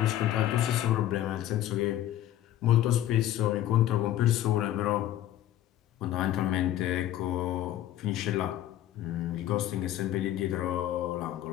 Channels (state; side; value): quieter; right; 12.8 dB